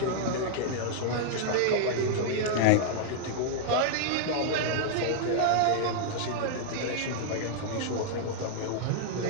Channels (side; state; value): both; different; correlation -0.01